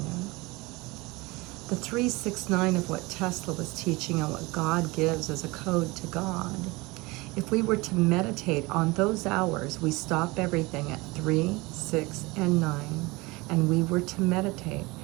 the 369 of what Tesla was teaching and what God gives as a code to God, if we were to meditate on those hours, we stop everything at 3, 6, and 9, and we were to meditate.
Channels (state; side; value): quieter; left; 23.5 dB